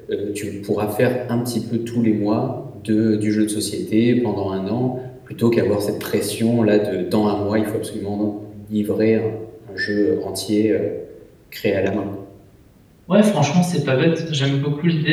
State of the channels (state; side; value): identical; both; correlation 1.00